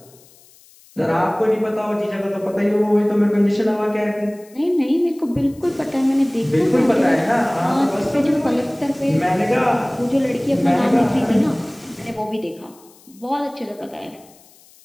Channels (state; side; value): noise; left; hiss, 27 dB below the sound